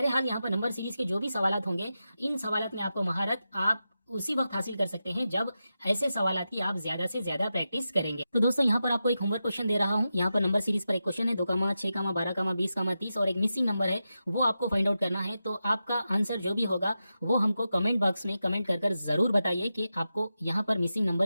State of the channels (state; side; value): inverted; both; correlation -0.90